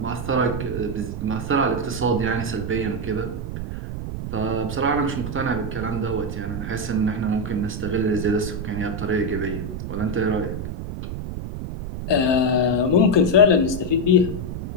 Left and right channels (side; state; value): right; noise; rumble, 6 dB below the sound